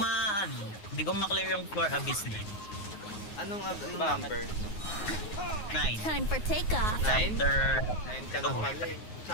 ko ma-clear yung floor abyss na. Anong Bakit? number? 9. Time for takeoff. 9? Chapter 9 ka na pala eh.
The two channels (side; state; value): right; late; 9.5 ms